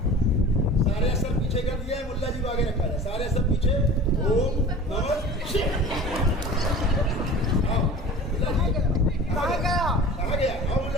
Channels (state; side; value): normal; both; correlation 0.39